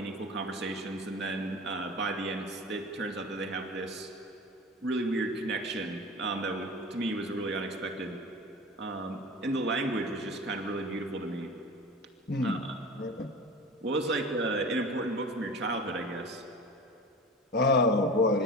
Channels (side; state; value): both; normal; correlation 0.34